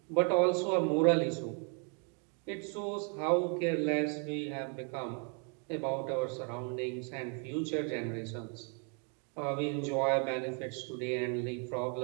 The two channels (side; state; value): left; quieter; 38.7 dB